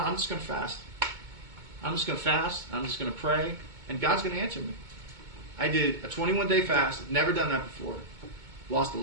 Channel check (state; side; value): late; left; 2.2 ms